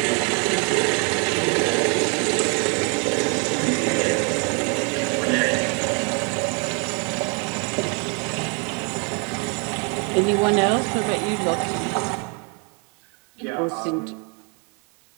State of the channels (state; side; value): quieter; left; 36.0 dB